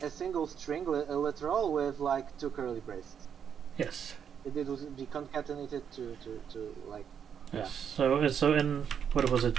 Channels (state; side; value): quieter; left; 7.9 dB